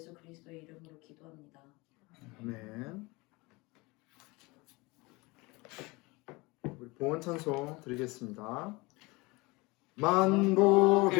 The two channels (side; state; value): right; quieter; 24.3 dB